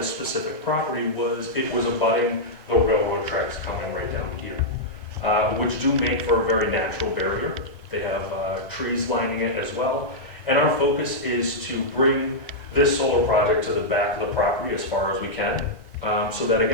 specific property was it was abutting the railroad tracks coming right down here, which do make for a very natural barrier. They have trees lining it as well. And our focus is to bring this solar project to the back of the property as far as we can, so that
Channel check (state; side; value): late; right; 1.0 ms